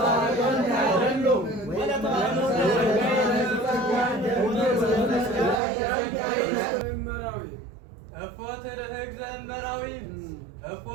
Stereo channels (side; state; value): left; drops out; at 5.6 s